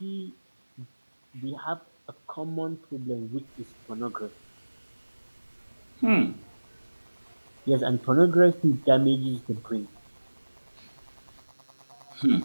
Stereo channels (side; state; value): both; inverted; correlation -1.00